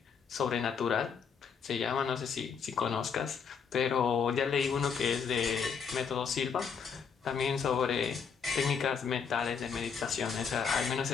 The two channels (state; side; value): quieter; right; 6.4 dB